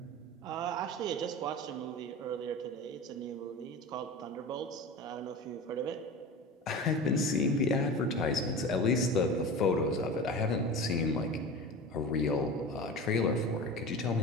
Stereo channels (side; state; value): both; normal; correlation 0.31